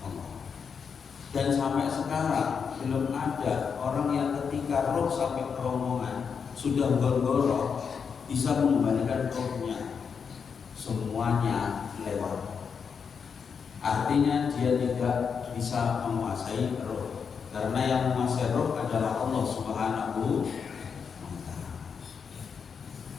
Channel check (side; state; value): right; quieter; 6.3 dB